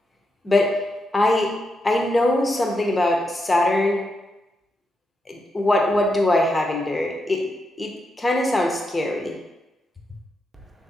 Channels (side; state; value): both; normal; correlation 0.84